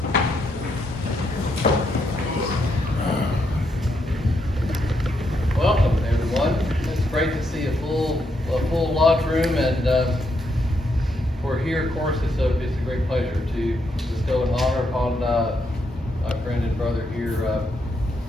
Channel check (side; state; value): both; normal; correlation 0.78